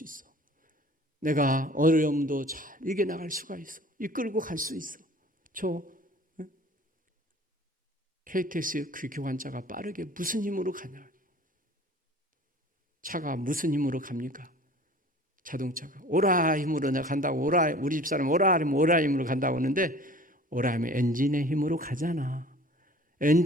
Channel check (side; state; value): both; normal; correlation 0.46